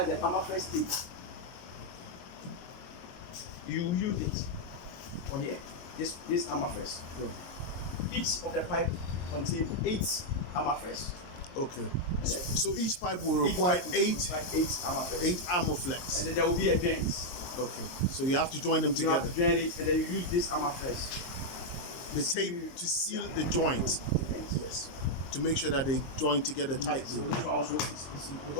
the Armaflex 8. You use it for here. This Armaflex. Right. Each of the pipe contains 8 armor flex. Okay. So each pipe will require 8 armor flex. armor flex. And then there will be a joint. Okay. So you have to join them You together. have to join it, and then you use this armor flex. The tape to seal the joint. Yes. To make sure that they join together tightly. So this one also is important.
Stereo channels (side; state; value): right; late; 22 ms